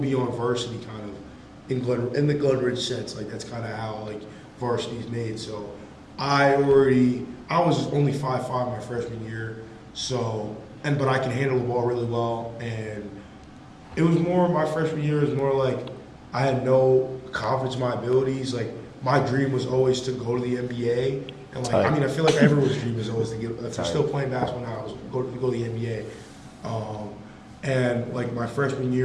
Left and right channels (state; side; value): identical; both; correlation 1.00